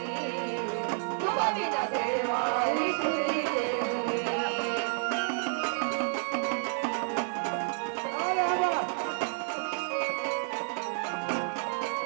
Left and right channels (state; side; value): silent; left; 58 dB below the other